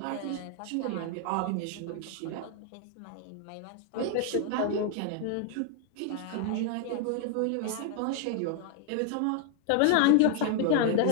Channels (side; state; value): both; different; correlation 0.00